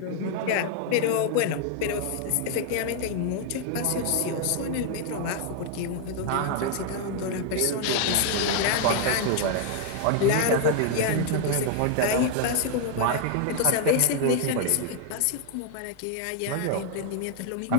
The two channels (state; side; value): different; both; correlation 0.00